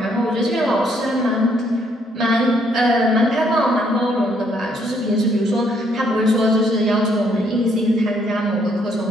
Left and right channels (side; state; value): both; normal; correlation 0.70